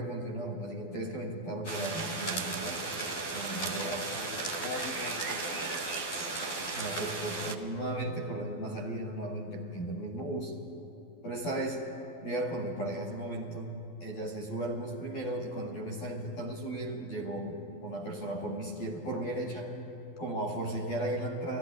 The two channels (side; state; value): right; late; 12 ms